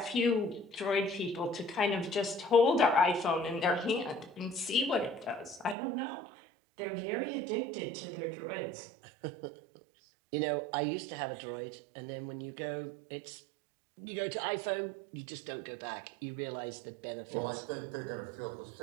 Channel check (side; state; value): left; drops out; at 5.8 s